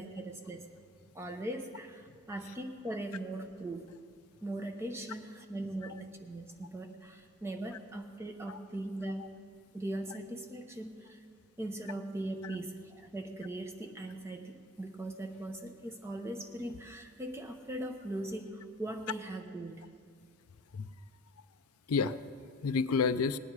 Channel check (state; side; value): normal; both; correlation 0.47